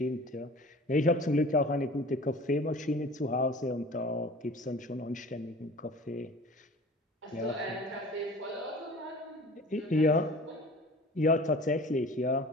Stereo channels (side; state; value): both; normal; correlation 0.42